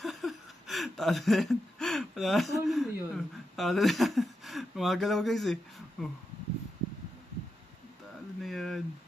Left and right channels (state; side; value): normal; both; correlation 0.87